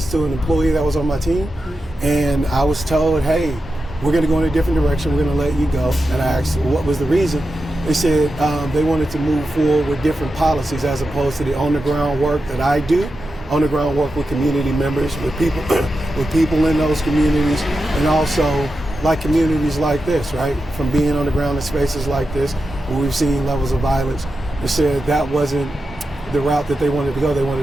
to an employee that was on my team. And I was told, hey, we're going to go in a different direction. We're going to let you go. And I asked what was the reason. They said they wanted to move forward with different policies as opposed to the on-the-ground work that I do. On-the-ground work with community members, with people, with people in those communities, and also like communities like this, right? From being on the ground in spaces like this, where we've seen levels of violence. They said that wasn't the route that they wanted to go. They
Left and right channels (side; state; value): both; normal; correlation 0.90